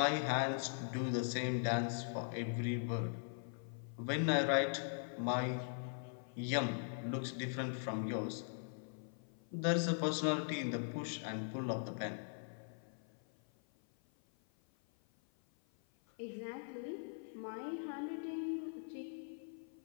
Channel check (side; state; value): right; silent; 50 dB below the other